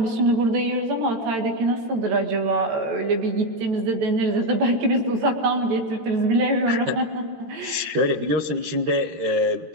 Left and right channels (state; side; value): late; left; 13 ms